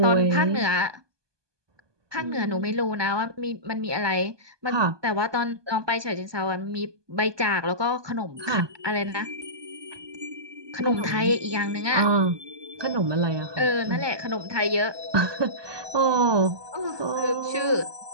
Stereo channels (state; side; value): late; left; 1.2 ms